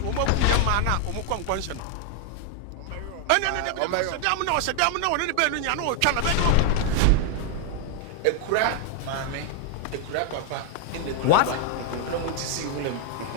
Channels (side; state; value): both; different; correlation 0.00